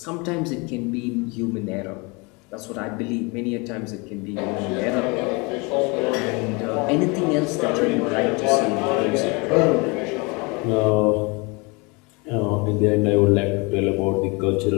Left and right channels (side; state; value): right; quieter; 28.5 dB